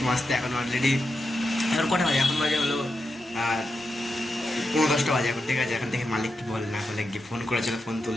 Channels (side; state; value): both; normal; correlation 0.87